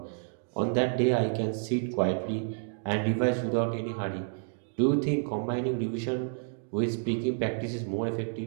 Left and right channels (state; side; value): silent; left; digital silence